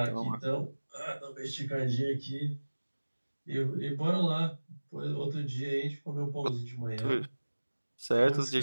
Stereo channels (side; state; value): both; inverted; correlation -1.00